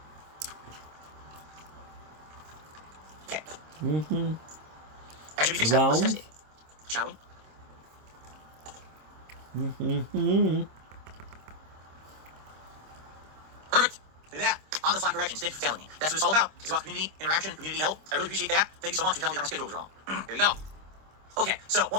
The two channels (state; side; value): late; left; 26 ms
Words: Okay. Mm-hmm. That should be fixed now. Let's Round. test it. Shall we? Mm-hmm. Perfect. Look at that. On the fly corrections. Thank you for telling me. That's what it's all about. It's about community interaction, community help. I really appreciate that. Thank you so much for telling me that my schedule was wrong. There you go. Okay, so